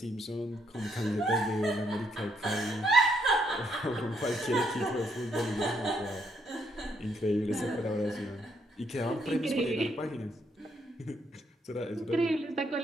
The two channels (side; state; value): both; normal; correlation 0.73